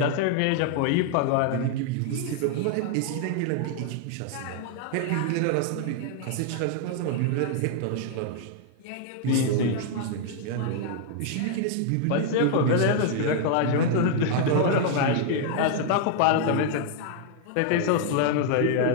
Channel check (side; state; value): both; different; correlation 0.00